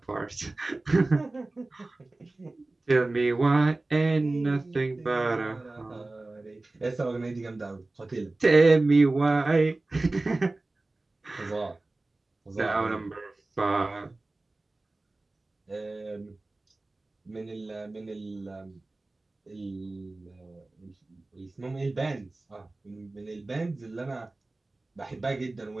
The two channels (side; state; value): left; quieter; 3.1 dB